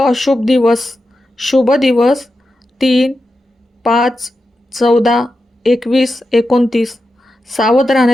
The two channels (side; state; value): both; normal; correlation 0.90